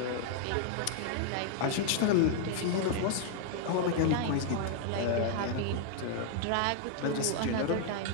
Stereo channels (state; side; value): different; both; correlation 0.00